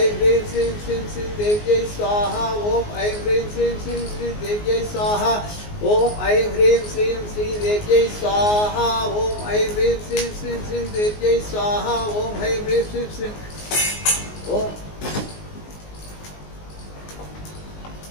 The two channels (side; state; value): right; late; 19 ms